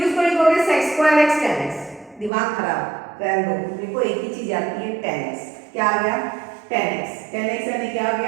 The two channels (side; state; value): left; drops out; at 2.3 s